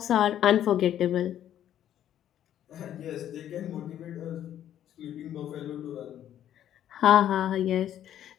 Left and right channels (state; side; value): quieter; right; 11.0 dB